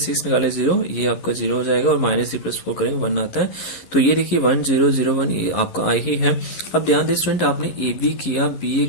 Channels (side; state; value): right; late; 11 ms